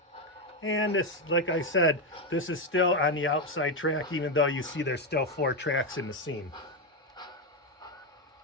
And this, like I said, this is still on the outside track, even though you see there's still 4 tracks in the scene.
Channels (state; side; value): normal; both; correlation 0.08